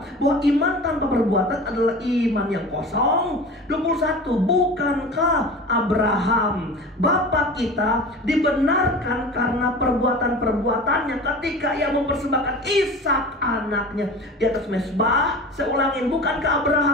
bahwa iman tanpa perbuatan adalah iman yang kosong? 21, bukankah Abraham Bapa kita dibenarkan karena perbuatan-perbuatannya ketika ia mempersembahkan Ishak anaknya di atas mezbah? Saya ulangin, bukankah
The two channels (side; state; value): both; normal; correlation 0.36